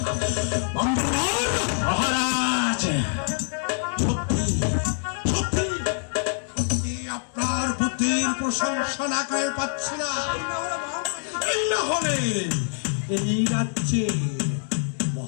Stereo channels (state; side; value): silent; right; 62 dB below the other